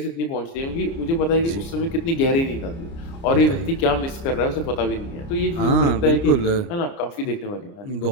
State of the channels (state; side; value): late; right; 29 ms